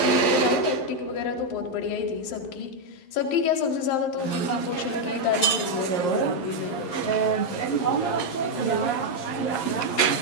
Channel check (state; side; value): late; right; 11 ms